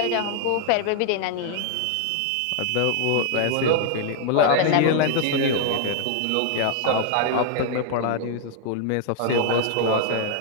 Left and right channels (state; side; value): different; both; correlation 0.00